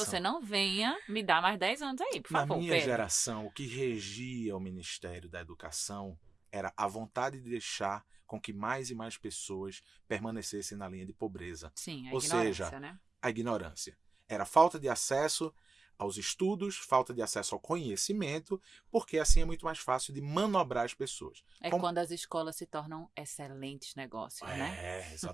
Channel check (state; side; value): quieter; left; 3.9 dB